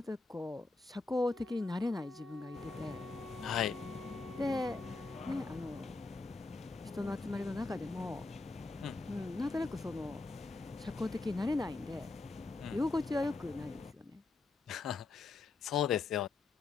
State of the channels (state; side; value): quieter; right; 3.6 dB